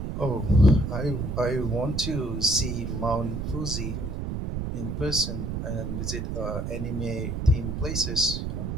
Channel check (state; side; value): noise; right; rumble, 3 dB below the sound